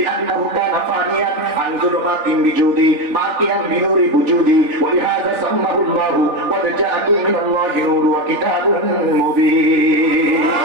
কানা ফানিয়ান আন যুলমাতিন বিজুদি বাকিয়ান বিনুরি বুজুদি ওয়া লিহাযা সাম্মাহু আল্লাহু ওয়া জাআকুম মিনাল্লাহি নূরুন ওয়া কিতাবুন মুবিন।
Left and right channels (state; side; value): late; left; 3.4 ms